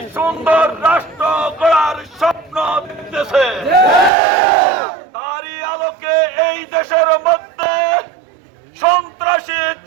সুন্দর রাষ্ট্র গড়ার স্বপ্ন দেখতেছে। তারই আলোকে এই দেশের মধ্যে সন্ত্রাসী,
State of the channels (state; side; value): drops out; left; at 4.1 s